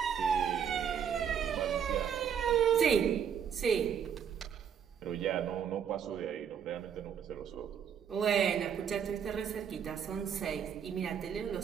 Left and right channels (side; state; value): left; quieter; 8.0 dB